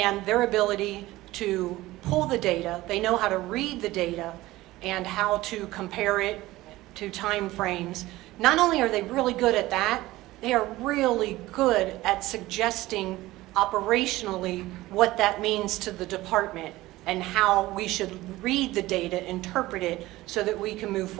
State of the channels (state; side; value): quieter; left; 17.8 dB